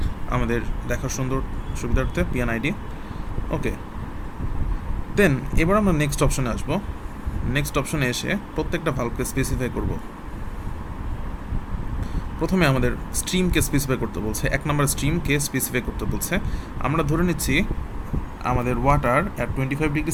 আমাদের দেখার সুবিধার্থে, PNID। ওকে, দেন এবার আমরা নেক্সট অপশনে আসবো। নেক্সট অপশনে এসে প্রত্যেকটা ভালভকে স্পেসিফাই করব। প্রথমে আমাদের স্ট্রিমকে স্পেসিফাই করতে বলছে, 1 নম্বর স্ট্রিমকে স্পেসিফাই করতে বলছে। আমরা ধরে নিচ্ছি আমাদের water at 25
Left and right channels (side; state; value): both; identical; correlation 1.00